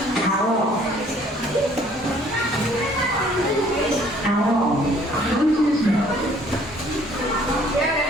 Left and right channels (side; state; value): both; normal; correlation 0.59